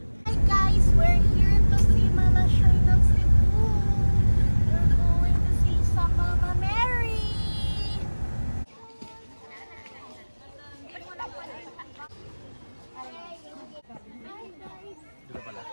Hi guys, we're here to see Mama Shrine of Cebu. We're going to see some Mama Mary. Ganda pala.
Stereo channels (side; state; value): both; inverted; correlation -1.00